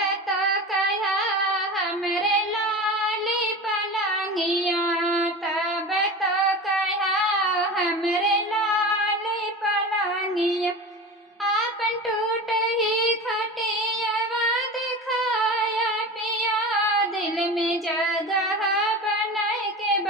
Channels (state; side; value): normal; both; correlation 0.30